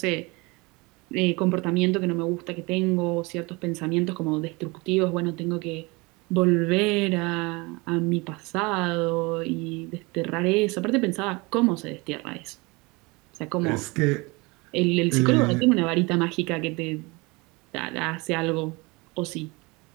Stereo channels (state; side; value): quieter; left; 25.6 dB